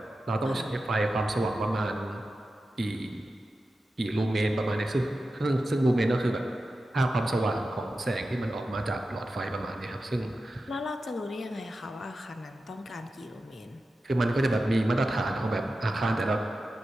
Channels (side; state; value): both; normal; correlation 0.92